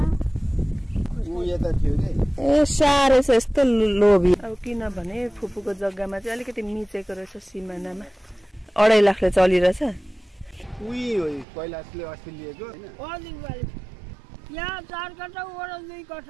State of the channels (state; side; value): drops out; left; at 11.5 s